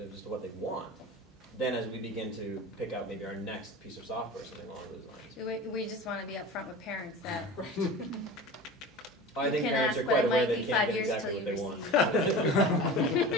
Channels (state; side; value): normal; both; correlation 0.34